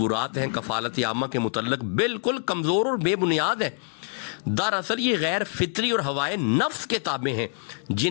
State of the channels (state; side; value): silent; right; 61 dB below the other